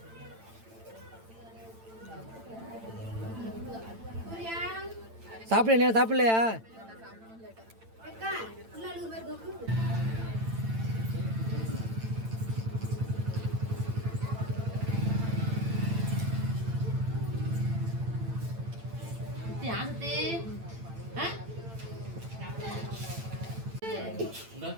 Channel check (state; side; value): late; left; 8.9 ms